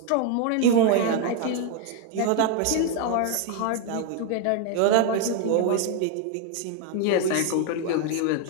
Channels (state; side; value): different; both; correlation 0.00